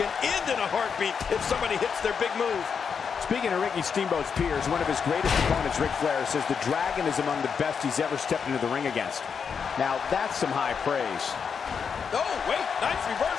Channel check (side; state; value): right; quieter; 6.4 dB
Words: end in a heartbeat if somebody hits their big move. Speaking of Ricky Steamboat's peers, one of his greatest opponents, Ric Flair, says the Dragon is among the best he's ever stepped into the ring against. Now, that's some high praise. Oh, wait, nice